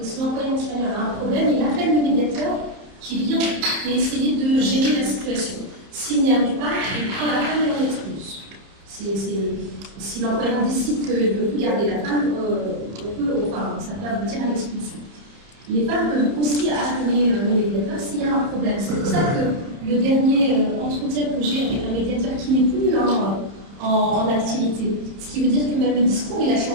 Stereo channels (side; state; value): left; late; 30 ms